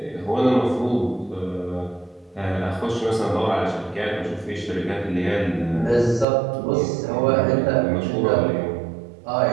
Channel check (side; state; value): left; drops out; at 6.2 s